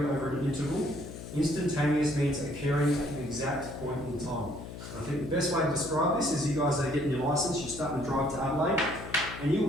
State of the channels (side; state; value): left; noise; hum, 11 dB below the sound